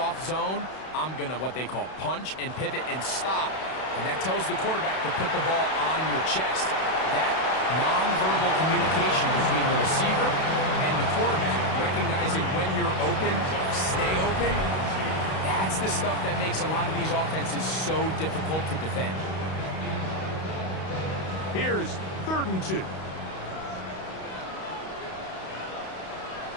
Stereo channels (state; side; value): late; right; 32 ms